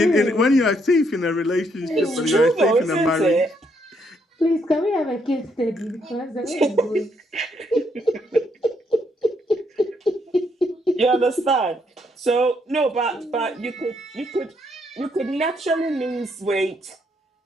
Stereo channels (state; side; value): normal; both; correlation 0.73